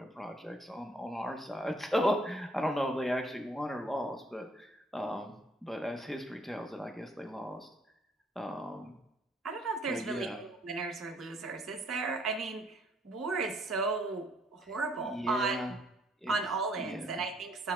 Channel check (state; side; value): normal; both; correlation 0.64